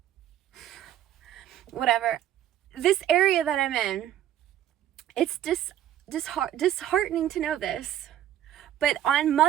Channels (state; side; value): quieter; left; 11.6 dB